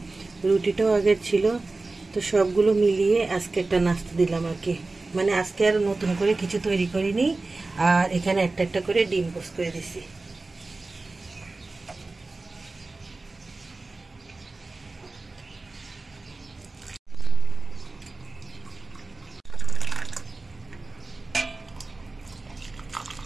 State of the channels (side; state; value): left; quieter; 3.4 dB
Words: রুটিটাও আগের ছিল, তো সবগুলো মিলিয়ে আজকে একটা নাস্তা দিলাম আর কি। মানে আজকে আর নতুন করে কিছু তৈরি করিনি, আর এখানে একটা একটা করে ডিম পোস্ট করে দিছি।